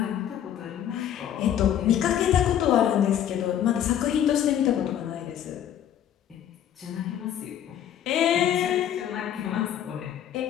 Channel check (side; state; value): right; quieter; 10.3 dB